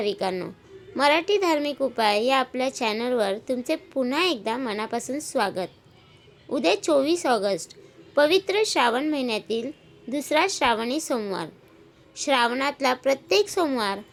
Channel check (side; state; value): both; identical; correlation 1.00